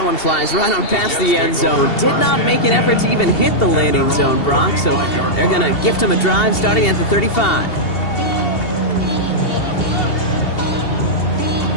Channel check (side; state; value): right; late; 2.7 ms